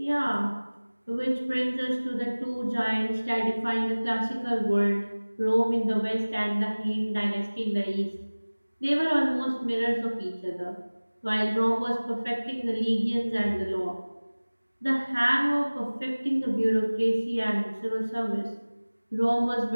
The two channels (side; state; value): both; inverted; correlation -1.00